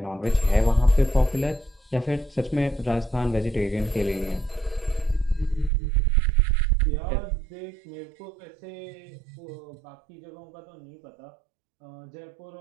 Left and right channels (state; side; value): drops out; left; at 5.7 s